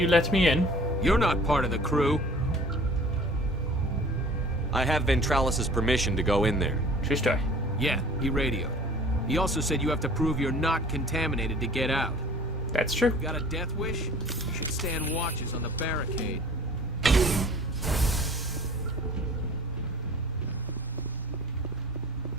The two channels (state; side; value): normal; both; correlation 0.47